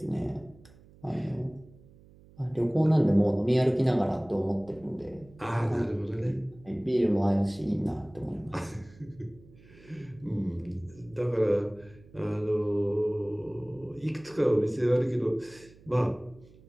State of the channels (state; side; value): noise; right; hum, 24 dB below the sound